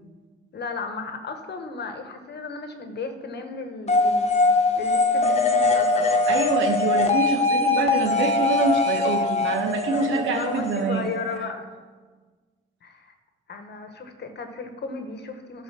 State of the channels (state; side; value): normal; both; correlation 0.23